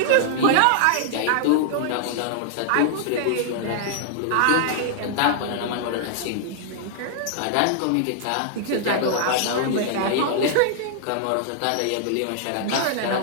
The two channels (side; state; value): both; different; correlation -0.01